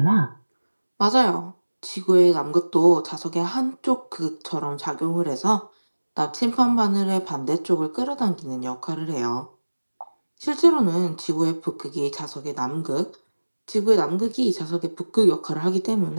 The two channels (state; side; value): inverted; both; correlation -1.00